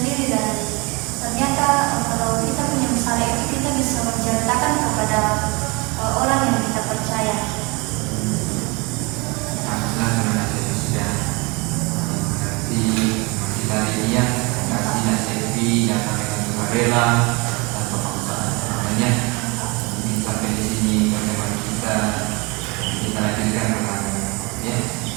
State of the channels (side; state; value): left; quieter; 27.5 dB